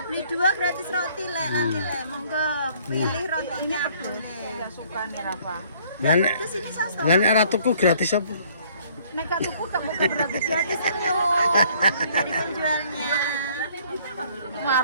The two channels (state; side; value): inverted; both; correlation -0.60